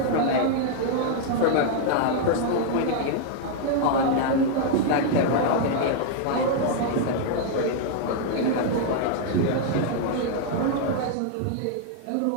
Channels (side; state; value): both; different; correlation 0.00